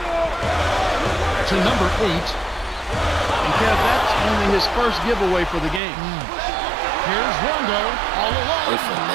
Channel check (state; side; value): drops out; left; at 5.8 s